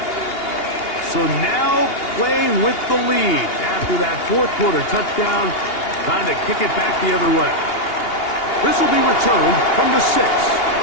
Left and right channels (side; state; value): right; late; 2.8 ms